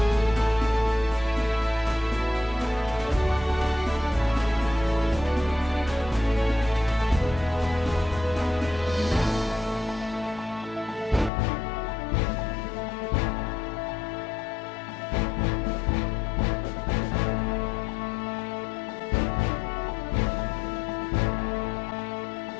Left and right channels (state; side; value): drops out; right; at 11.3 s